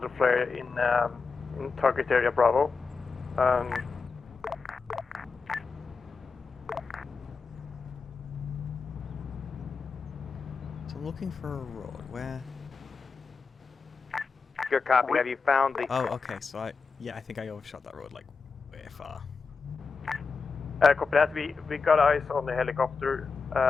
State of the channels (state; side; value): quieter; right; 4.8 dB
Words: flare in target area Bravo. So I'm looking for a road. Where? Good copy. Have you found the... Oh, okay. So I think I overshot that road like way far. Copy that. We got eyes on the helicopter